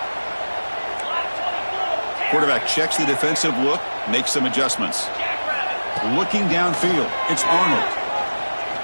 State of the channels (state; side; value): inverted; both; correlation -1.00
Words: Quarterback checks the defensive look, makes some adjustments. Looking downfield, it's Arnold.